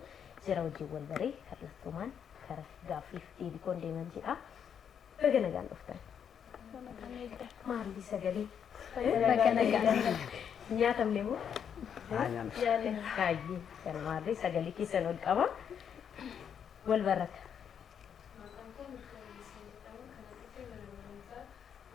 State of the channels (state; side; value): quieter; right; 8.0 dB